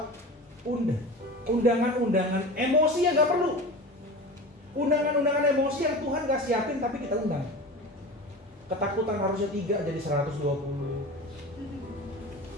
undangan-undangan emosi yang nggak perlu. Undangan-undangan emosi yang Tuhan nggak siapin tapi kita undang. Ketakutan harusnya 3 jadi 120.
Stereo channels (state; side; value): normal; both; correlation 0.33